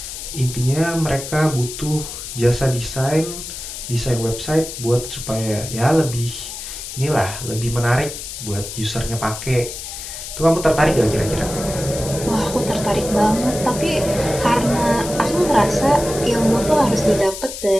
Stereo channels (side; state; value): left; noise; hiss, 9 dB below the sound